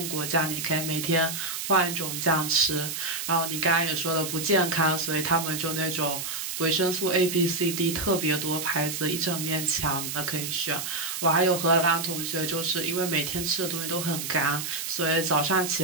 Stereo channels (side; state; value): right; noise; hiss, 5 dB below the sound